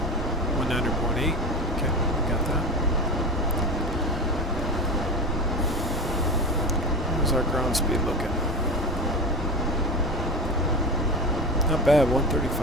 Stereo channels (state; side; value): normal; both; correlation 0.24